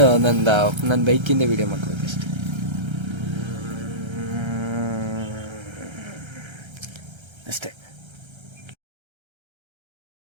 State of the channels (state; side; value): late; left; 1.3 ms